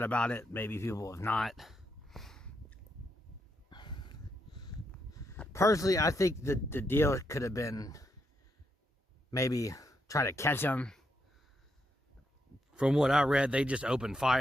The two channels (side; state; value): both; normal; correlation 0.80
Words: about it. Maybe people have not. Personally, I think the deal could have been maybe try to catch them. From what I read, they just opened